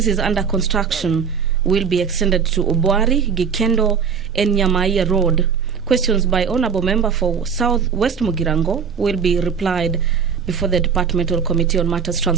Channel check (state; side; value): quieter; left; 6.5 dB